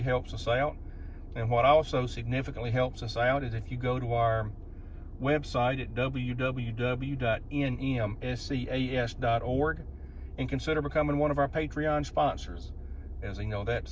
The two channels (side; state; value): both; identical; correlation 1.00